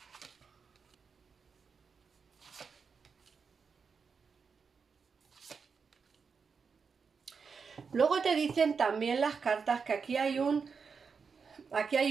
Luego te dicen también las cartas que aquí hay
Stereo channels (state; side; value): quieter; left; 5.6 dB